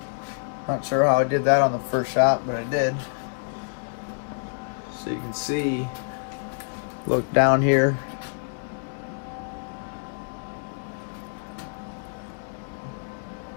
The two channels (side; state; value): right; silent; digital silence